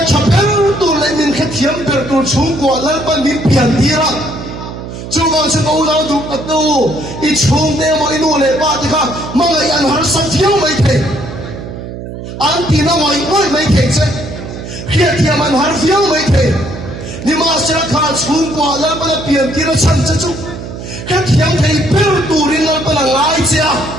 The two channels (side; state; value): right; noise; hum, 10 dB below the sound